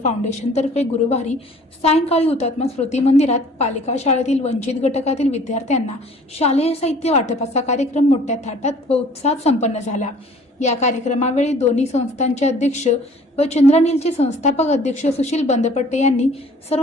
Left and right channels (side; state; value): both; normal; correlation 0.52